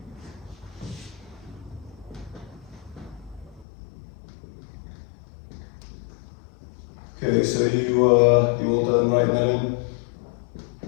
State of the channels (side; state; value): right; drops out; at 3.7 s